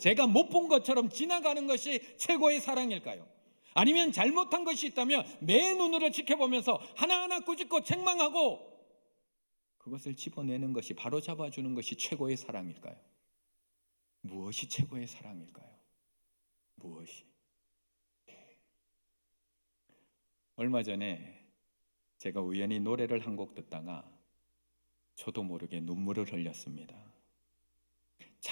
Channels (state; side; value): inverted; both; correlation -1.00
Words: 못 본 것처럼 지나가는 것이 최고의 사랑일까요? 아니면 잘못한 것이 있다면 내 눈으로 지켜보면서 하나하나 꾸짖고 책망하고 그것을 집어내는 것이, 바로 잡아주는 것이 최고의 사랑일까요? 무엇이 최고의 사랑일까요? 무엇이? 얼마 전에 제가 우연히 노래를 한 곡 듣다가 저도 모르게 눈물을 흘렸습니다.